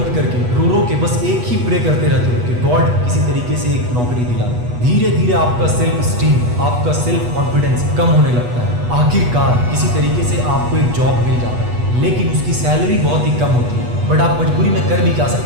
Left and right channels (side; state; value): left; late; 8.2 ms